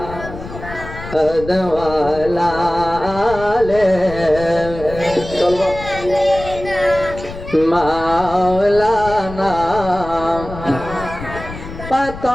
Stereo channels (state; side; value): noise; left; rumble, 12 dB below the sound